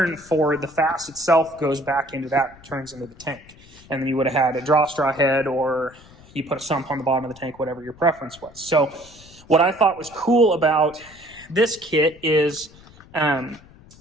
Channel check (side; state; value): left; noise; rumble, 23 dB below the sound